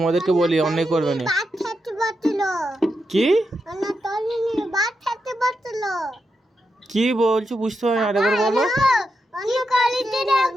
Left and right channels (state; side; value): normal; both; correlation 0.86